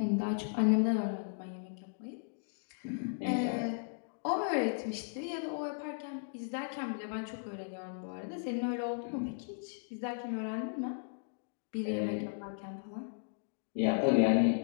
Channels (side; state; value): right; silent; digital silence